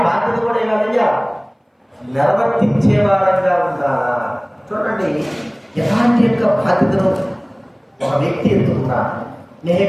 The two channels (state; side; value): identical; both; correlation 1.00